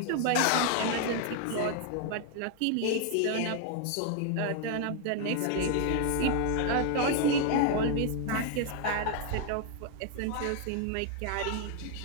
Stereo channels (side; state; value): both; different; correlation 0.00